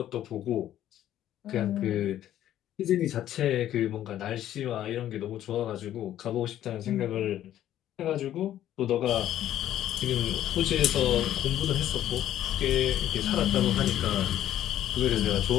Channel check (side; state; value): right; quieter; 12.1 dB